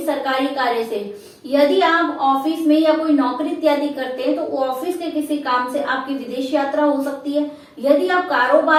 सरकारी कार्य से। यदि आप ऑफिस में या कोई नौकरी इत्यादि करते हैं तो ऑफिस के किसी काम से आपकी विदेश यात्रा हो सकती है। यदि आप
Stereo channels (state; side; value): identical; both; correlation 1.00